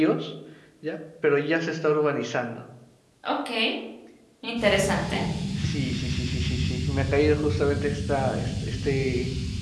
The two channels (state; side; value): identical; both; correlation 1.00